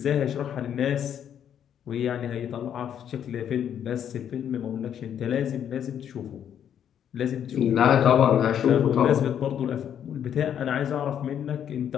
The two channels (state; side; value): quieter; right; 9.3 dB